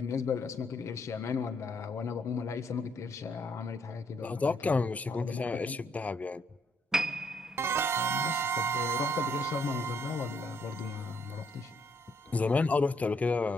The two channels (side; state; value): both; normal; correlation 0.71